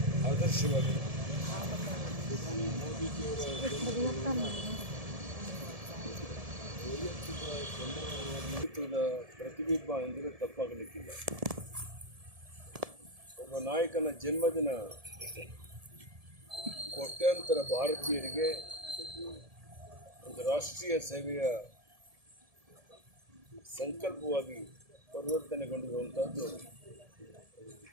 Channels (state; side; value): late; left; 1.7 ms